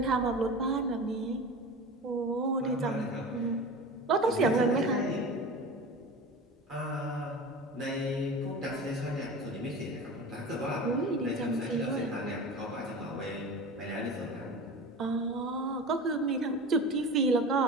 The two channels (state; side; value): normal; both; correlation 0.33